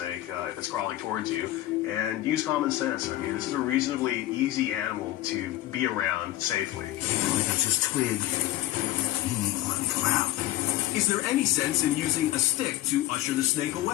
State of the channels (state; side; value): quieter; right; 15.5 dB